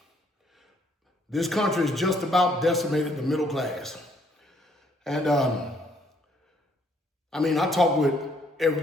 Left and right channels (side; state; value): both; normal; correlation 0.67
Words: This country is just about decimated the middle class. And I talk with